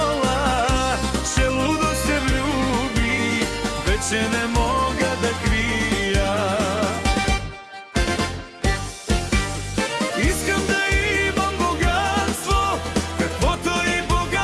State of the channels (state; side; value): identical; both; correlation 1.00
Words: че лудо се влюбих, вече не мога да крия. Искам да имам богатство, каквото и